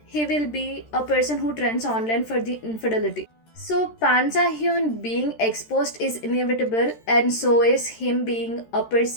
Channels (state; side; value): late; right; 13 ms